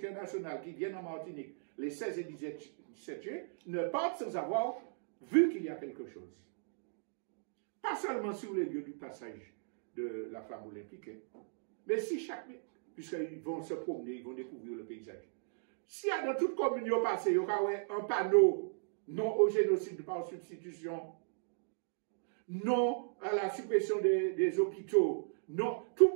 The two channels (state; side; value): silent; left; digital silence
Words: qui vienne en Martinique les 16 et 17 juillet ne parte sans avoir vu qu'il y a quelque chose. Pas seulement sur les lieux du passage de la flamme olympique, hein, mais si puisqu'ils vont se promener, ils vont découvrir le paysage. S'il y a dans toute commune au passé, il y aura un panneau non au génocide par substitution, non à la suppression des hôpitaux, non, tout